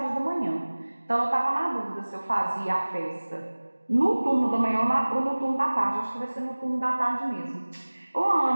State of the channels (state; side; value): inverted; both; correlation -1.00